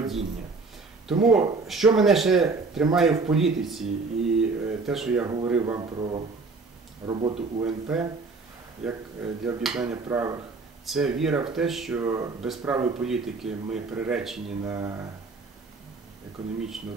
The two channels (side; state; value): left; quieter; 4.1 dB